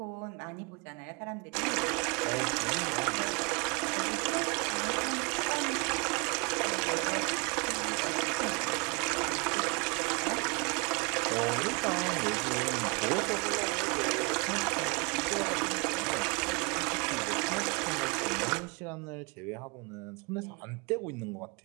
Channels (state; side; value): quieter; left; 29.7 dB